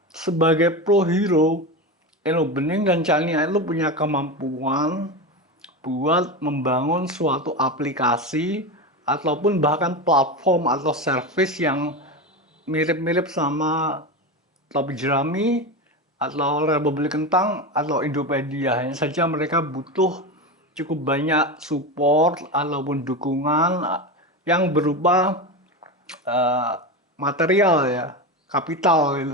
sebagai pro hero, Eno Bening dan Chania itu punya kemampuan buat membangun suatu aplikasi ataupun bahkan platform atau service yang mirip-mirip sama Topi Jerami atau Republik Kentang atau Indopedia. Hanya saja mereka butuh cukup banyak support ataupun dukungan yang berupa uh, material ya, kapital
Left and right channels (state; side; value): normal; both; correlation 0.20